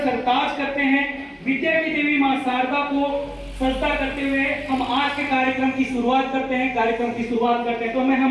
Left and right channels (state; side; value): identical; both; correlation 1.00